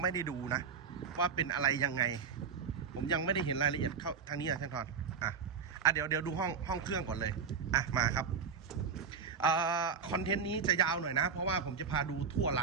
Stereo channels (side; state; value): left; quieter; 6.1 dB